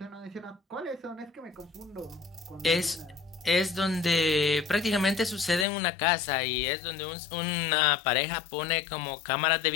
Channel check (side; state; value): right; drops out; at 5.7 s